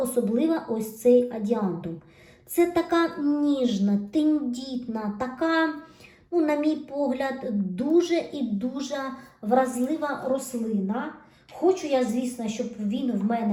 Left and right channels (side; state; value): both; identical; correlation 1.00